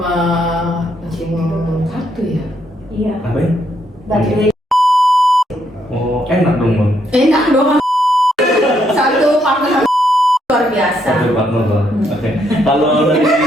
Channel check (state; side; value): normal; both; correlation 0.74